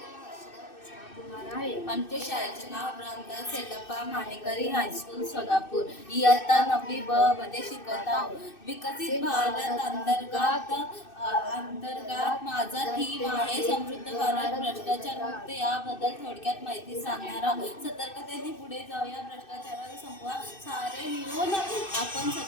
हर्षदा कृष्णा कुमार आहे. आमच्या शाळेचे नाव रामदास येडप्पा मानेकरी हायस्कूल सोलापूर. इयत्ता 9वी ब मध्ये शिकत आहोत. विकसित भारत अंतर्गत माझा थीम आहे समृद्ध भारत भ्रष्टाचार मुक्त. याबद्दल थोडक्यात माहिती सांगणार आहोत. सतर्कतेने पुढे जाऊया, भ्रष्टाचाराला संपवा. सारे मिळून आपण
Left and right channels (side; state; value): right; late; 2.6 ms